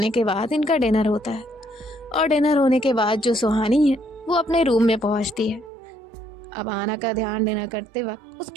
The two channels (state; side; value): drops out; left; at 5.7 s